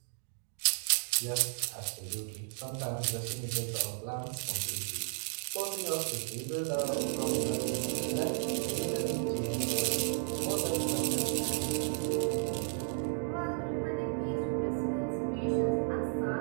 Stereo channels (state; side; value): silent; left; 55 dB below the other